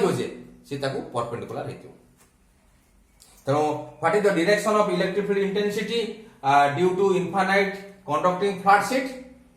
जे से ताकू परपेंडिकुलर हेतिबो तो what is the direction of electric field intensity due to infinite conducting flat sheet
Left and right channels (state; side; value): identical; both; correlation 1.00